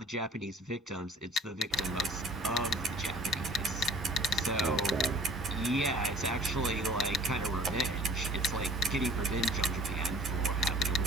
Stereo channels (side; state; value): both; normal; correlation 0.49